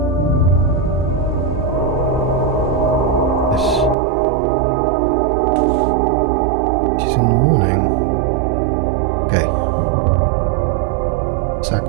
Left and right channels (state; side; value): drops out; left; at 4.0 s